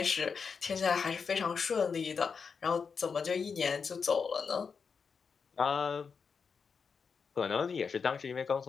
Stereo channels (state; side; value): quieter; right; 5.7 dB